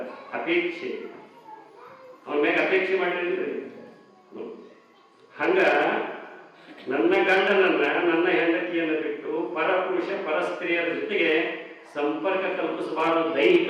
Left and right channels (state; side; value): identical; both; correlation 1.00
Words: ಅಪೇಕ್ಷೆ, ಅವನ ಮೇಲೆ ಅಪೇಕ್ಷೆ ಮಾಡಿದ್ರಿ. ಹಂಗ ನನ್ನ ಗಂಡನನ್ನ, ನನ್ನ ಹೆಂಡತಿಯನ್ನು ಬಿಟ್ಟು ಪರಪುರುಷ ಪರಸ್ತ್ರೀಯರ ಜೊತೆಗೆ ಸಂಪರ್ಕ ಕಲ್ಪಿಸಬಾರದು